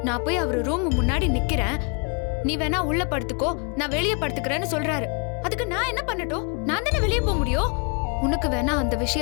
நான் போய் அவரு ரூம் முன்னாடி நிக்கிறேன். நீ வேணா உள்ள படுத்துக்கோ, நான் வெளியே படுத்துக்கிறேன்னு சொல்றாரு. அதுக்கு நான் என்ன பண்ணட்டும்? நான் தானே வெளியே போக முடியும். உனக்கு வேணா அந்த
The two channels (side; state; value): right; quieter; 35.1 dB